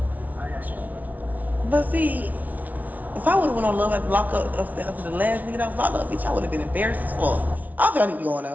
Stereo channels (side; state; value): left; late; 0.075 ms